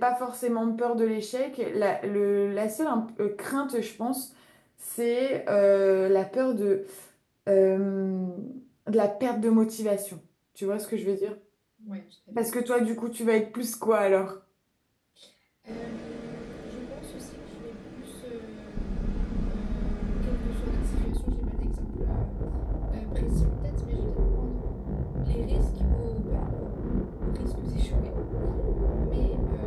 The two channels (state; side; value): identical; both; correlation 1.00